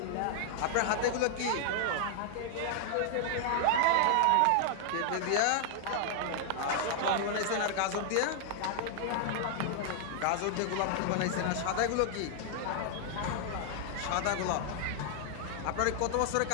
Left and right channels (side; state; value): both; different; correlation -0.01